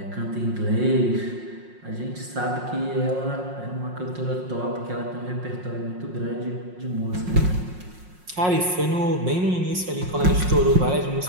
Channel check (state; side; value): late; left; 5.5 ms